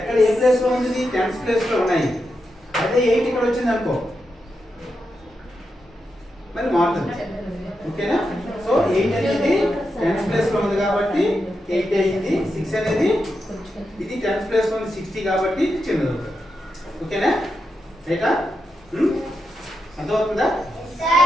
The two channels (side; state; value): both; normal; correlation 0.86